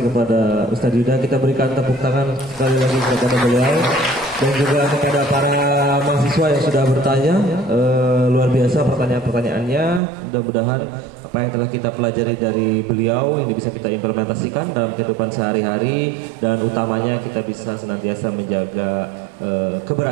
kepada Ustadz Yuda. Kita berikan tepuk tangan sekali lagi kepada beliau dan juga kepada para mahasiswa yang sudah bertanya. Luar biasa pertanyaan-pertanyaannya. Mudah-mudahan apa yang telah kita pelajari dari beliau ini bisa kita implementasikan dalam kehidupan sehari-hari, dan utamanya kita bisa senantiasa menjaga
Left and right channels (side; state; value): left; drops out; at 10.0 s